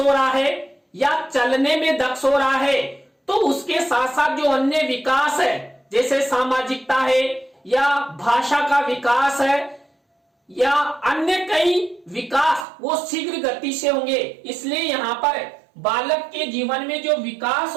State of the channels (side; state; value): left; drops out; at 12.7 s